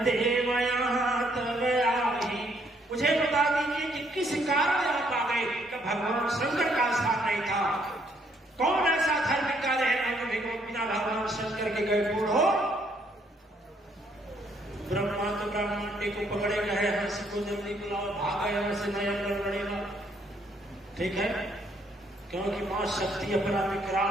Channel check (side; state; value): both; normal; correlation 0.69